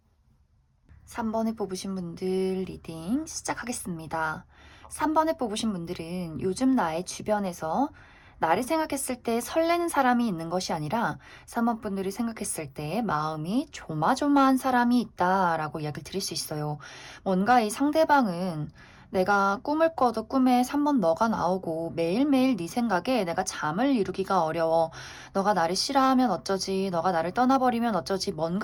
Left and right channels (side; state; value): both; identical; correlation 1.00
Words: 3번에 뽑으신 분들 리딩 시작하겠습니다. 3번에 뽑으신 분들은 요즘 나의 주변에서 나를 생각했을 때 설레는 사람이 있는 것이 아니라 3번 분들이 생각했을 때 마음이 조마조마한 사람이 있다라고 이야기를 드릴 수 있어요. 뭔가 이 상대방은 내가 꿈을 꿔도 꿈에 3번 너가 나오고 매일매일 네 생각에 내가 잠을 이루기가 어려워. 너가 나를 싫어하면 어쩌지? 너가 나를 떠나버리면 어쩌지?